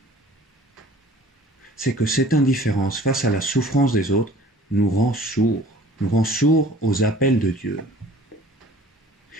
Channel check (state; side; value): normal; both; correlation 0.48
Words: C'est que cette indifférence face à la souffrance des autres nous rend sourds aux appels de Dieu.